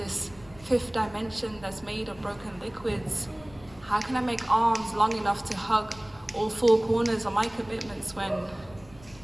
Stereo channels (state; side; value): noise; left; rumble, 22 dB below the sound